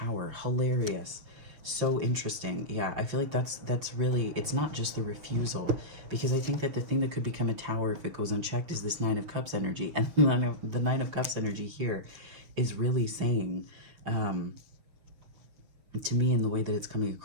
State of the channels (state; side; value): late; left; 6.4 ms